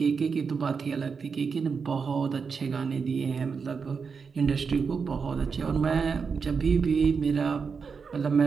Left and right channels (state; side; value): quieter; left; 5.5 dB